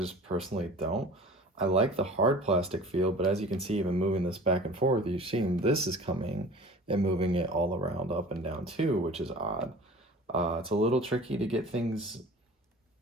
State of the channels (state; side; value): normal; both; correlation 0.42